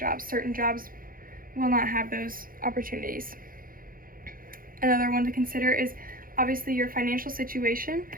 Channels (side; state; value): left; late; 0.41 ms